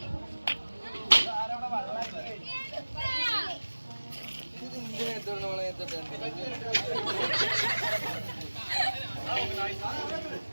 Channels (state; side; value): inverted; both; correlation -1.00